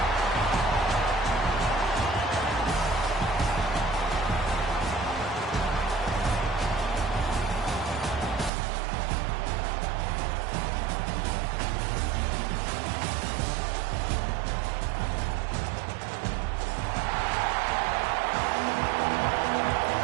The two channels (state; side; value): drops out; left; at 8.5 s